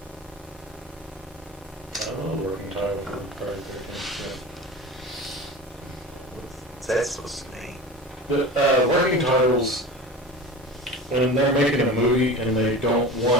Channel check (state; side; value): normal; both; correlation 0.33